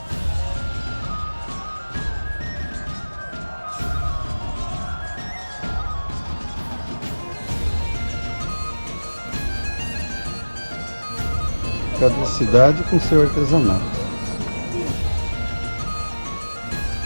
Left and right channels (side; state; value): both; inverted; correlation -1.00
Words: Cada cidade com seu artesanato.